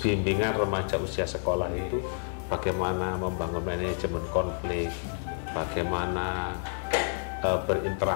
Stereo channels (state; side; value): silent; right; digital silence